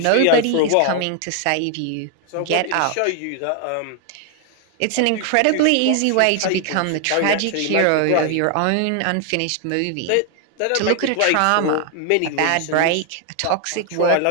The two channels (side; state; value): both; different; correlation 0.00